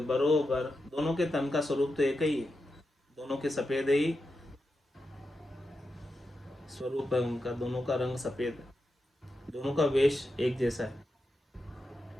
बरोबर। दोनों के तन का स्वरूप तो एक ही है, दोनों के सफेद ही स्वरूप है उनका, दोनों का रंग सफेद है, दोनों का वेश एक जैसा है।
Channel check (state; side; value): normal; both; correlation 0.88